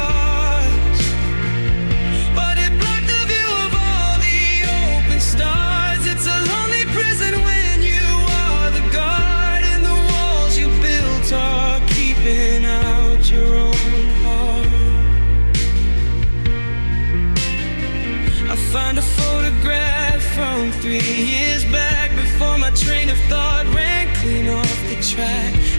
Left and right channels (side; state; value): both; inverted; correlation -1.00